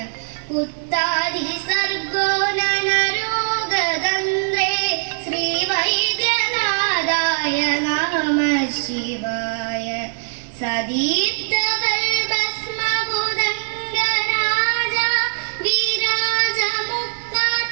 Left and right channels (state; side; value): silent; left; 64 dB below the other